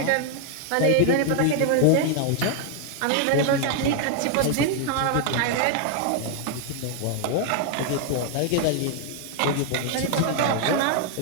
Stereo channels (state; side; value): different; both; correlation 0.00